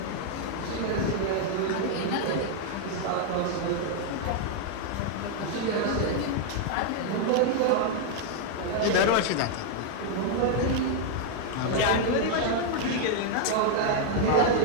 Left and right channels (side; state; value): both; different; correlation 0.00